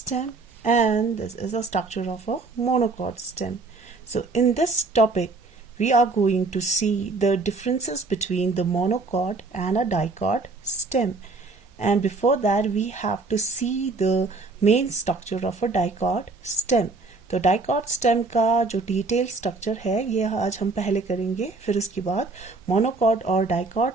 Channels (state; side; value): quieter; left; 3.7 dB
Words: and this is a structure of a monocot stem. So in this topic, we are going to see the differences between the monocot and a dicot stem. And before that, we have to see the main structure of a dicot stem. तो dicot stem का जो detail structure है ये आज हम पहले करेंगे, फिर उसके बाद मोनोकॉट और